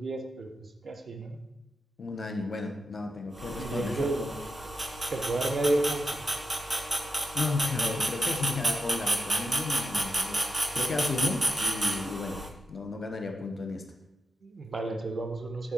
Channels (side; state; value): both; normal; correlation 0.86